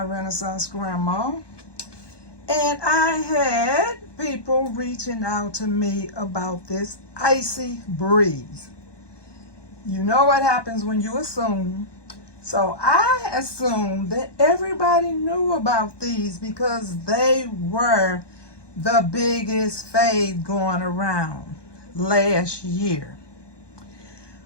Renaissance Grandma. And I had people reaching out to me about this Icy Breeze. You know what happens when you assume. So I assumed that everybody knew about these because they were the biggest fad going around last year.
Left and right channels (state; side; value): late; right; 1.2 ms